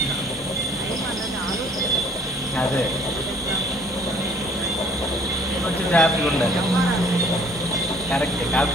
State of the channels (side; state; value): both; normal; correlation 0.56